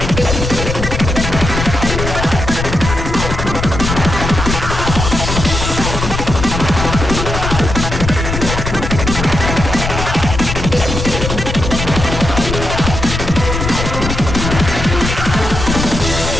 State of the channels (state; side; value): noise; left; rumble, 4 dB below the sound